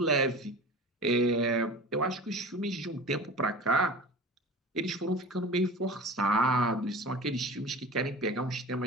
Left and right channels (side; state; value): both; normal; correlation 0.36